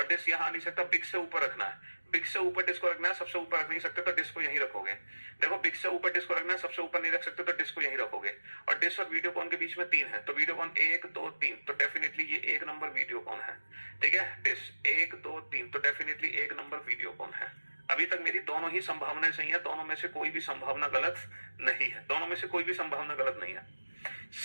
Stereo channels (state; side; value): inverted; both; correlation -1.00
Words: डिश यहां आ नहीं सकता, बिग से ऊपर रखना है। बिग से ऊपर डिश को रखना है, सबसे ऊपर रख नहीं सकते तो डिश को यहीं रखोगे। देखो बिग से ऊपर डिश को रखना है, सबसे ऊपर नहीं रख सकते तो डिश को यहीं रखोगे। और डिश और वीडियोकॉन के बीच में 3 है, तो वीडियोकॉन 1 2 3, तो डेफिनेटली ये 1 नंबर वीडियोकॉन है। ठीक है, डिश 1 2 3, तो डेफिनेटली 1 नंबर वीडियोकॉन है। अभी तक मेरी दोनों ही संभावनाएं सही है, दोनों में से कोई भी संभावना गलत नहीं है, दोनों में से कोई भी संभावना गलत नहीं है।